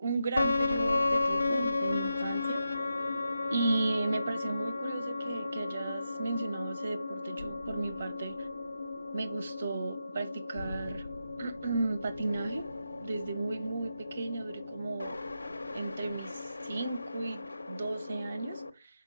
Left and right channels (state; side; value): inverted; both; correlation -0.87